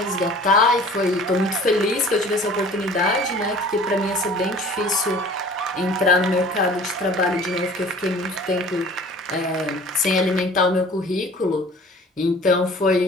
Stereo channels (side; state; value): both; normal; correlation 0.47